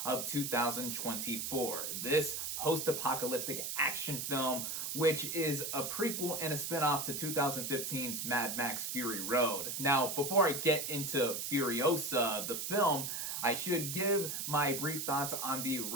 of 2024. This post-apocalyptic action film, which is a prequel and a spin-off to 2015's Mad Max Fury Road. Now, before I get into Furiosa, the film, I should give my brief thoughts on the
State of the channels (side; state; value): right; noise; hiss, 3 dB below the sound